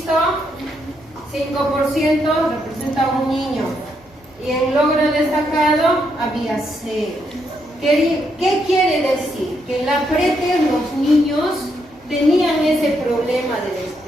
5% representa un niño. Y en logro destacado había 0. ¿Qué quiere decir? Que en la PRETES los niños tenían ese problema de la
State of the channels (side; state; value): both; normal; correlation 0.78